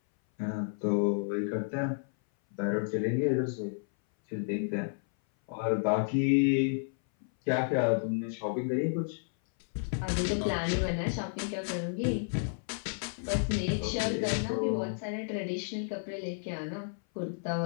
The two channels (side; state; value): right; silent; 57 dB below the other